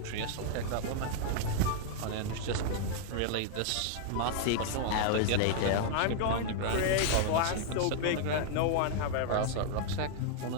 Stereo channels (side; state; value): both; different; correlation 0.00